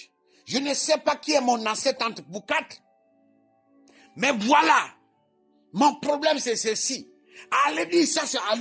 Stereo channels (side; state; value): both; identical; correlation 1.00